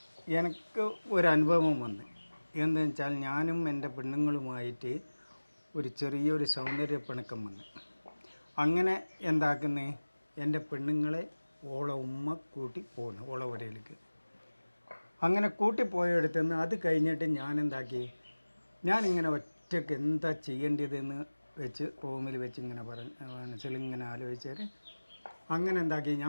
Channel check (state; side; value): inverted; both; correlation -1.00